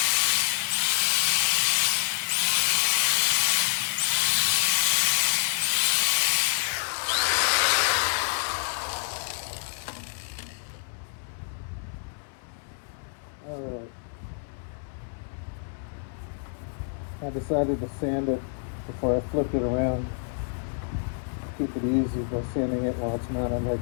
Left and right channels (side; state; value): right; silent; 60 dB below the other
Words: I decided to sand it before I flipped it around. Keep it easy by sanding it while it's mounted